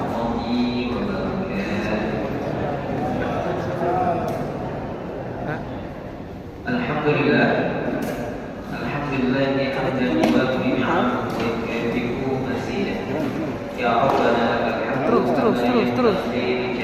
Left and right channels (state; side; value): identical; both; correlation 1.00